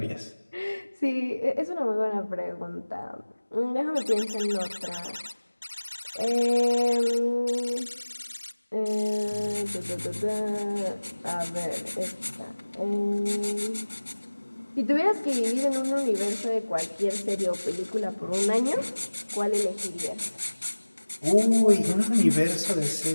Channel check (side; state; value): both; inverted; correlation -1.00